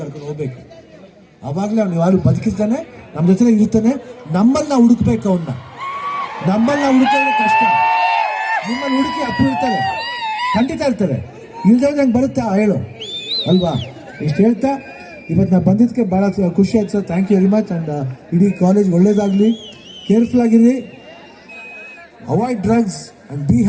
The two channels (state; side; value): identical; both; correlation 1.00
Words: ಹೋಗ್ಬೇಕು. ಆವಾಗಲೇ ಅವ್ನು ಯಾರು ಬದುಕಿರ್ತಾನೆ, ನಮ್ಮ ಜೊತೆ ಇರ್ತಾನೆ. ನಮ್ಮಲ್ಲಿ ನಾವು ಹುಡುಕ್ಬೇಕು ಅವನ್ನ. ನಮ್ಮಲ್ಲಿ ನಾವು ಹುಡುಕೋದ್ರೆ ಕಷ್ಟ. ನಿಮ್ಮಲ್ಲಿ ಹುಡುಕಿ ಅಪ್ಪು ಇರ್ತಾರೆ, ಖಂಡಿತ ಇರ್ತಾರೆ. ಇಲ್ದೇ ನಂಗೆ ಬರುತ್ತೆ ಹೇಳು ಅಲ್ವಾ? ಇಷ್ಟು ಹೇಳ್ತಾ ಇವತ್ತು ನಾವು ಬಂದಿದ್ದಕ್ಕೆ ಭಾಳ ಖುಷಿ ಆಯ್ತು sir. Thank you very much. And ಇಡೀ ಕಾಲೇಜ್ ಒಳ್ಳೇದಾಗಲಿ, ಕೇರ್ಫುಲ್ ಆಗಿರಿ, avoid drugs and be